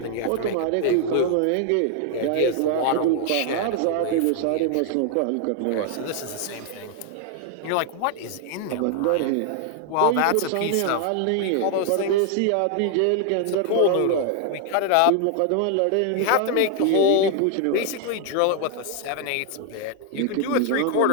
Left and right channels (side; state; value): both; different; correlation 0.00